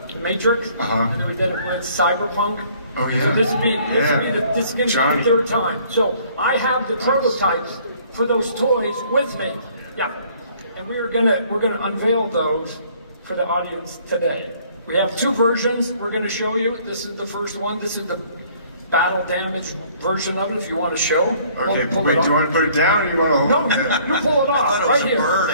Matrix, and then we did it with Cyberpunk. Oh yeah. So this would be the third time. So I have the prototypes for those toys with me. Yeah, and we're gonna unveil those for the audience today. We have two versions. We're gonna show you. This is the first one. This is the battle damage version of it, if you want to show. Okay, wait, do you want to put it down or do you want to hold it? No, you pull it off, right here.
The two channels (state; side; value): inverted; both; correlation -0.58